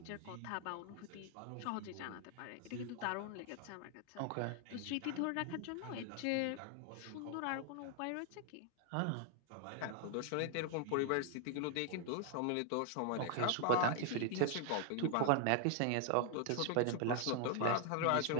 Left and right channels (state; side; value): different; both; correlation 0.00